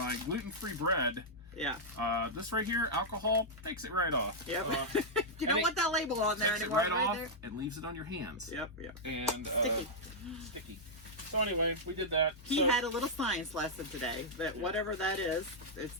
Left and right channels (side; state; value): both; normal; correlation -0.07